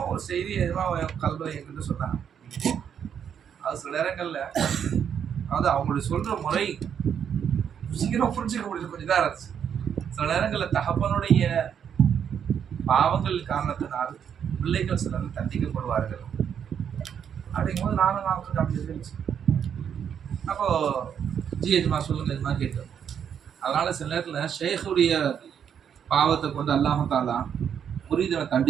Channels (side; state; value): left; quieter; 8.2 dB